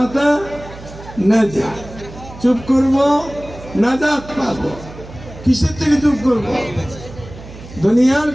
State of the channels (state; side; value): noise; right; hum, 16 dB below the sound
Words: নাজাত, চুপ করব নাজাত পাবো। কিসের থেকে চুপ করব? দুনিয়ার